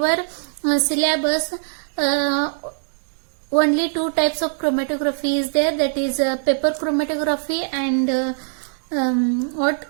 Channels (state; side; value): silent; left; digital silence